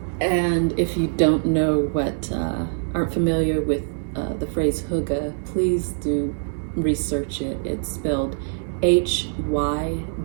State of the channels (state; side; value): silent; left; digital silence